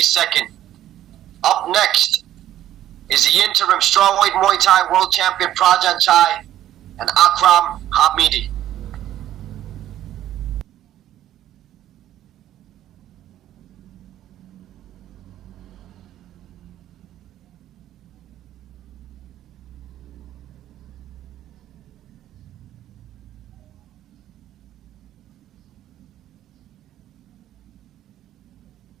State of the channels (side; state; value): left; quieter; 12.5 dB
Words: Up next is the interim strawweight Muay Thai world champion Prajanchai and Akram Hamidi.